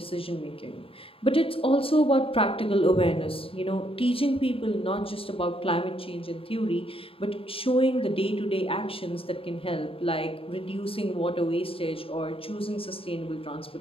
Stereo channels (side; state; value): right; late; 0.27 ms